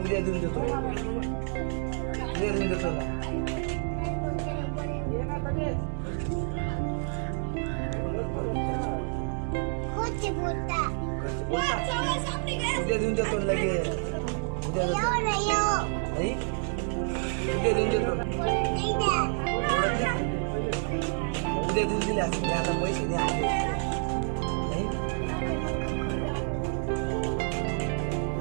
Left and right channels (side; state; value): left; silent; 59 dB below the other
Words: देऊन देतो. उद्या देऊन देतो ना. उद्या देऊन देतो लगेच. उद्या देतो. नाही उद्या देऊन देतो. उद्या देऊन दिले असते. आता पैसे द्या. नाही